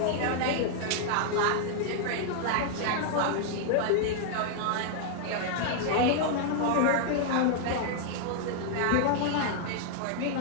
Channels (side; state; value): both; different; correlation 0.00